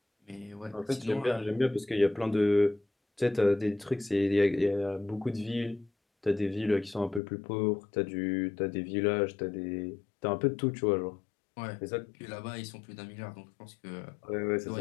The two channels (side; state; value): right; drops out; at 7.2 s